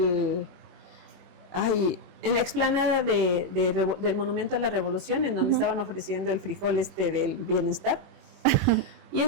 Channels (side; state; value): left; late; 21 ms